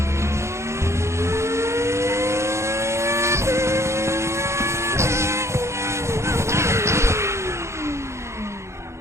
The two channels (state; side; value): late; left; 0.13 ms